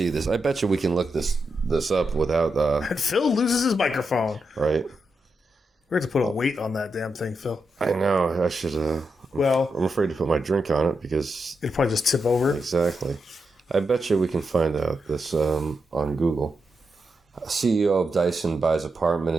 this. I bet you we can look this up without... And Phil loses his microphone. Right. We're going to put a weight on that damn thing, Phil. I know. I should... I'm afraid to put my drink on it because... It'll probably just tip over. Exactly. I bet you we can find out this on Google. CEO of Dyson buys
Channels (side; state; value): both; normal; correlation 0.86